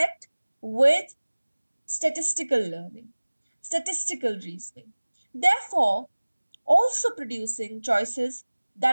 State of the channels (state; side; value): inverted; both; correlation -1.00